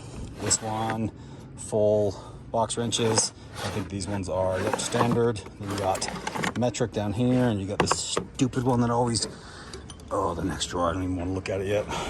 This one, full box wrenches. I think these ones are standard. Then you got metric down here, and you got this stupid one that always, oh, the next drawer, I don't even want to look at it yet.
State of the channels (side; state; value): both; identical; correlation 1.00